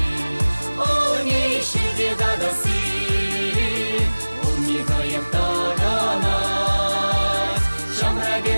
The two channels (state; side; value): inverted; both; correlation -1.00